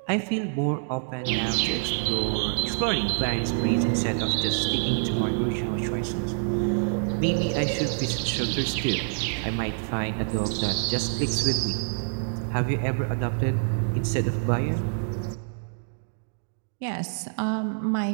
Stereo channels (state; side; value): silent; left; digital silence